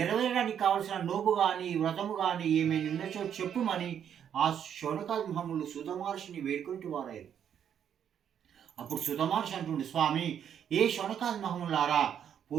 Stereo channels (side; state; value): left; quieter; 8.9 dB